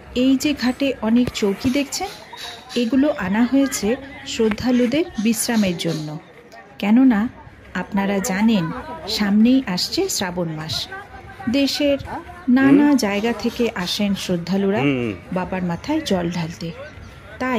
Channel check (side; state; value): both; identical; correlation 1.00